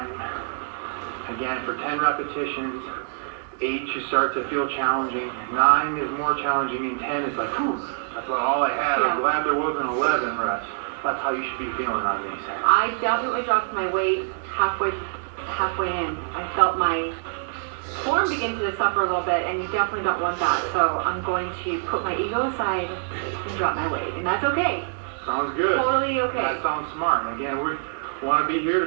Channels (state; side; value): silent; left; digital silence